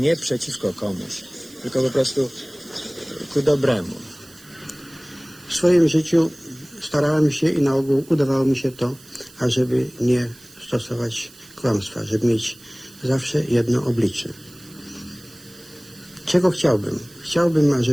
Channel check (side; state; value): right; noise; hiss, 23 dB below the sound